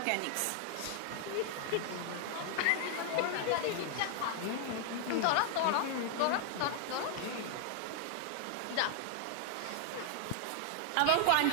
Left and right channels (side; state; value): both; different; correlation 0.00